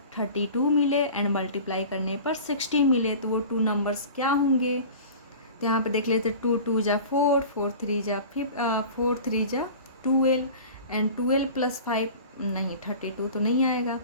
32 मिले एंड मल्टीप्लाई करने पर 60 मिले। तो वो 2 नंबर्स क्या होंगे? तो यहाँ पे देख लेते 2 2 जा 4 4 3 जा 4 3 जा 12, एंड 12 + 5 नहीं 32 तो नहीं आएगा।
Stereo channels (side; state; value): both; inverted; correlation -0.39